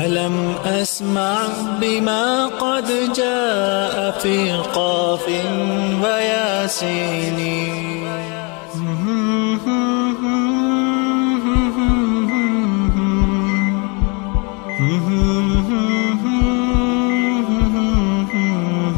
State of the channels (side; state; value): right; quieter; 32.3 dB